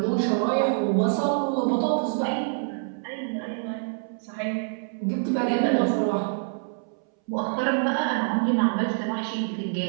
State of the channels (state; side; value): silent; left; 61 dB below the other